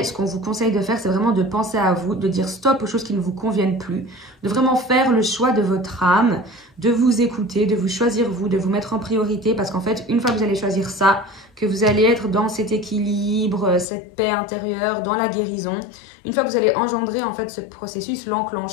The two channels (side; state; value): right; drops out; at 13.9 s